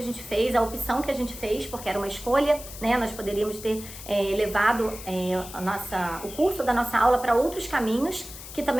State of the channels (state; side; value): noise; left; hiss, 13 dB below the sound